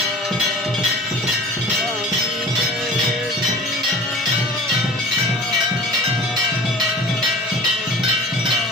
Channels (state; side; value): normal; both; correlation 0.41